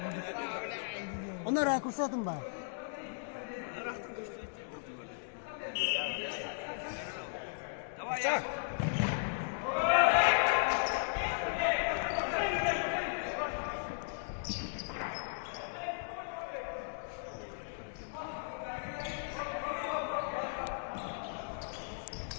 Onlar rakursatım ba. Çak.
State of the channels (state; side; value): silent; right; digital silence